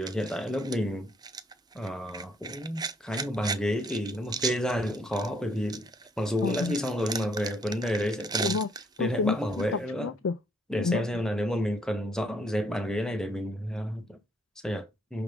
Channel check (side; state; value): both; normal; correlation 0.68